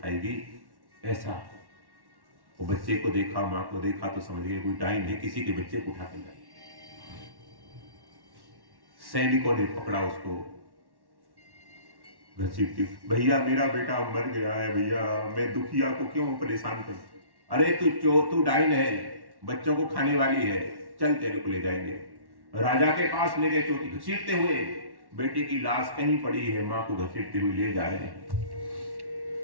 ऐसा। वो बच्चे को देखा, माँ को देखा तो समझ गए कोई डाइन है, किसी के बच्चे को उठा के लाई। सैनिकों ने पकड़ा उसको, घसीटती, भैया मेरा बेटा मर गया है भैया, मैं दुखिया को क्यों परेशान करूं? अरे तू डाइन है, बच्चों को खाने वाली है, चल तेरे को ले जाएंगे। राजा के पास ले गए, चोटी घसीटते हुए, बेटे की लाश कहीं पड़ी है, मां को घसीटते हुए ले जा रहे हैं।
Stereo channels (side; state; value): left; late; 1.1 ms